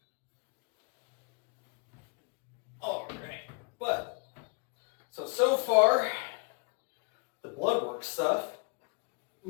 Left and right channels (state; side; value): quieter; right; 35.4 dB